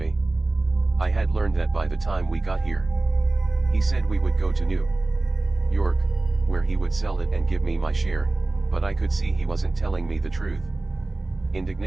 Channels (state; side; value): quieter; left; 3.0 dB